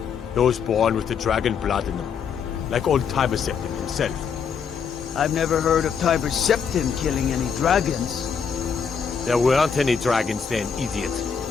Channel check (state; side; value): quieter; right; 6.6 dB